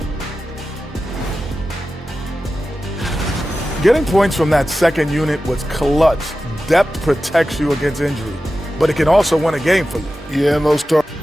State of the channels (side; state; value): both; normal; correlation 0.93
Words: Getting points from that second unit was clutch. Depth protects you against injury, but it can also win a game for you. Yeah, most are.